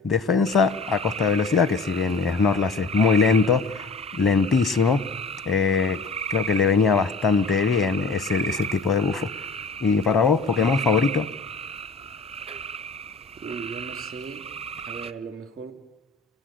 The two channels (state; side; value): quieter; right; 4.0 dB